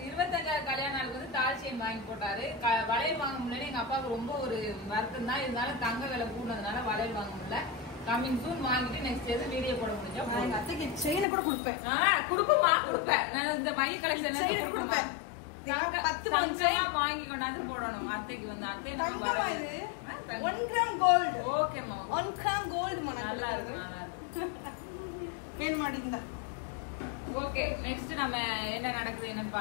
25 கல்யாண நாளுக்கு வந்து தால் செயின் வாங்கி போட்டாரு. வளையல் வாங்க முடியல. எங்க அப்பாவுக்கு ரொம்ப ஒரு வருத்தம் தான். இருந்தாலும் தங்க விலை கூடதுனால வளையல் வாங்க முடியல. கமிங் சூன் வாங்கிட்டு நெக்ஸ்ட் எது வீடியோ போட முடிஞ்சா எங்க அத்தைக்கு செயினை கூட கொடுப்பேன். கொடுப்போமா? கொடுப்பேன். நான் இந்த மைய கலெக்ஷன் கொடுப்பேன். 10 வாங்கி கொண்டாந்து போடணும் அத்தைக்கு வந்து. அத்தை 1 கிராம் கோல்டு. ஓகேமா, 1 கிராம் கோல்டு நல்லா இருக்கு, நல்லா இருக்கு. கேன் மாட்டீங்க. ஓகே, நெக்ஸ்ட் நம்ம என்ன நடக்குது என்னன்னு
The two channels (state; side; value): drops out; right; at 11.2 s